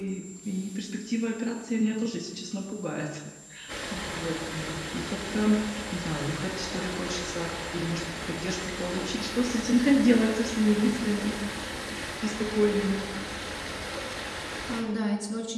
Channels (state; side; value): identical; both; correlation 1.00